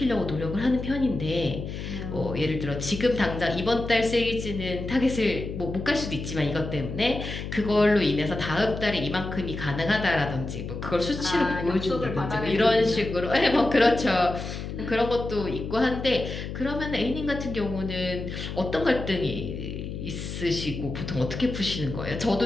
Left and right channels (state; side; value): noise; left; hum, 7 dB below the sound